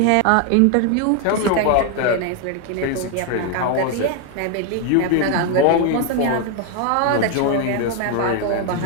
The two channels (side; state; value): both; different; correlation 0.01